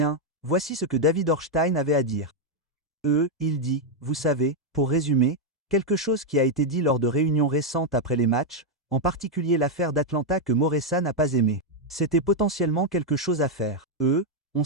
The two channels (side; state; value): both; normal; correlation 0.01